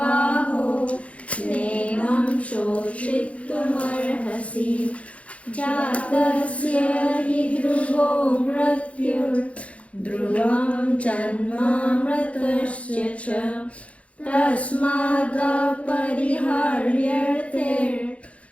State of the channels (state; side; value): late; right; 0.063 ms